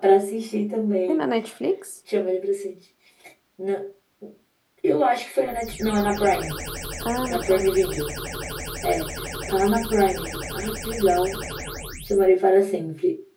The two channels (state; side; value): identical; both; correlation 1.00